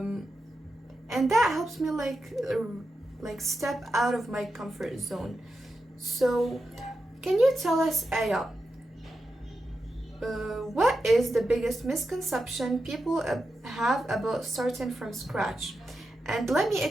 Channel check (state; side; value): normal; both; correlation 0.89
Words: and that helps me step out of my comfort zone. So Yeah. can you tell us, Aya, what is the biggest misconception people have about starting from scratch? And let me